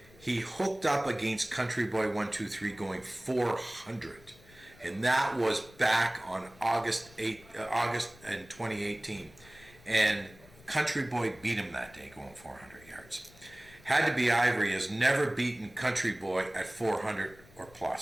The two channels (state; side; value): noise; left; rumble, 24 dB below the sound